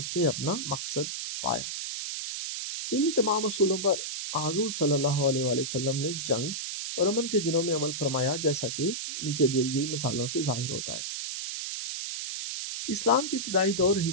نے اپنا مقصد پایا۔ انہی تمام اصولوں پر حضور صلی اللہ علیہ وآلہ وسلم نے جنگ اور امن کے دنوں میں عمل فرمایا، جیسا کہ نیچے دی گئی مثالوں سے ظاہر ہوتا ہے۔ اسلام کے ابتدائی دور ہی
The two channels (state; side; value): noise; right; hiss, 5 dB below the sound